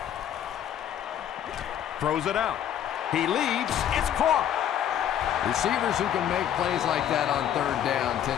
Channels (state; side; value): quieter; right; 10.2 dB